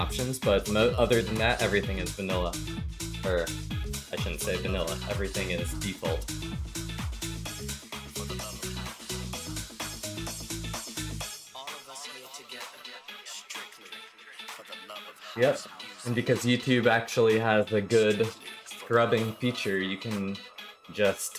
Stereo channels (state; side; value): identical; both; correlation 1.00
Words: but other than that, everything is vanilla. Or, I shouldn't say vanilla, everything is default. Yep, and because YouTube actually has a good scrubbing feature, you can